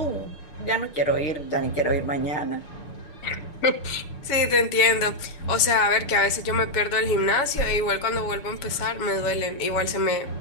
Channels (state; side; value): late; right; 7.2 ms